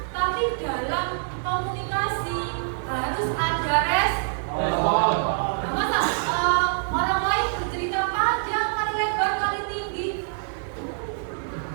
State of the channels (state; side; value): silent; left; 62 dB below the other